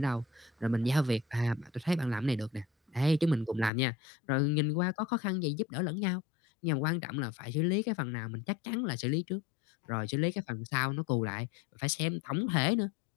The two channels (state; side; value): drops out; right; at 3.7 s